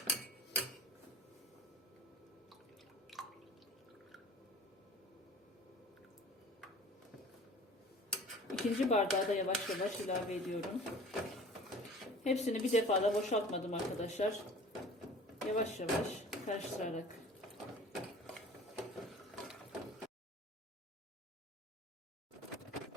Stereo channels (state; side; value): normal; both; correlation 0.44